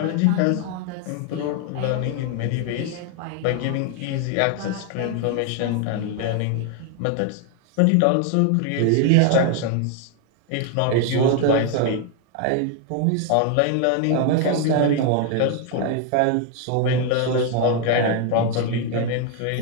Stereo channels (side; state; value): both; different; correlation 0.01